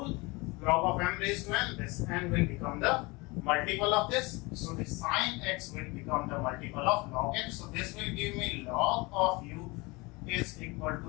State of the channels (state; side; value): quieter; right; 25.0 dB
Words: Log of m raised to n, this n will become the multiple of this. So the sine x will become the multiple of log x. So this will give me log of u is equal